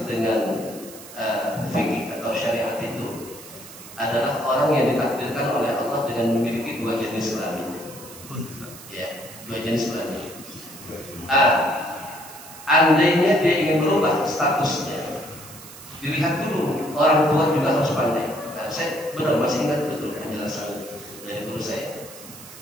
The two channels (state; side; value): noise; right; hiss, 16 dB below the sound